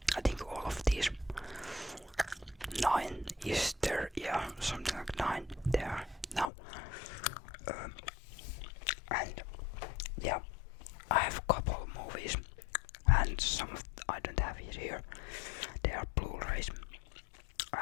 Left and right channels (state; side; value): drops out; right; at 6.5 s